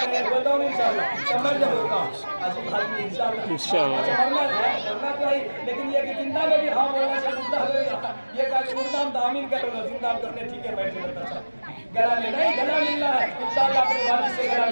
बताओ इंशाअल्लाह समझ होगा इंशाअल्लाह। अच्छा मरना तो है, लेकिन ये कि जिंदा में भी हाँ बोलना चाहिए, मुर्दा में ये कहा कि मुर्दा हम दामिन कर लो, जिंदा करने ठीक है बैठे रहता था गला में नहीं, गला मिलना है इंशाअल्लाह, अपने वालिद से गला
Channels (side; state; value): both; inverted; correlation -1.00